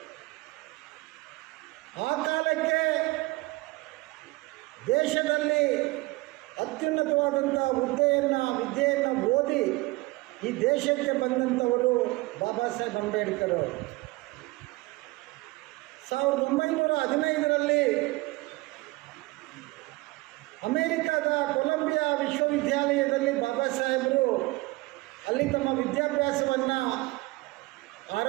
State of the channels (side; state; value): left; quieter; 22.3 dB